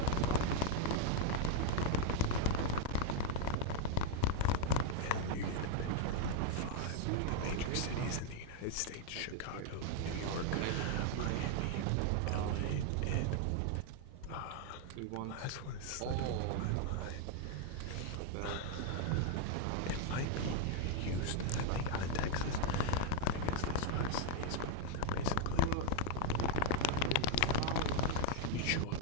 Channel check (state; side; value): different; both; correlation 0.00